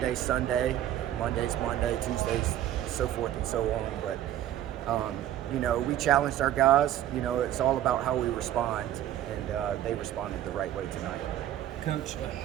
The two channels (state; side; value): quieter; left; 12.2 dB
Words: Sunday, Monday's Monday, Tuesday's so forth and so on. But we challenged our guys. It's all about how we respond, and they responded the right way tonight. Coach,